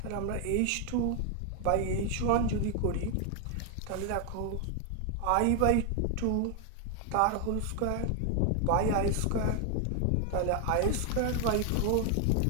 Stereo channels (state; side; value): different; both; correlation 0.00